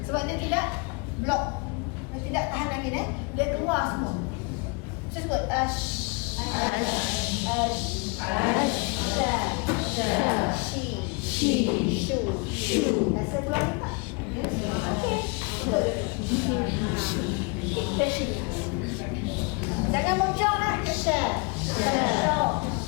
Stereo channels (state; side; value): quieter; right; 31.4 dB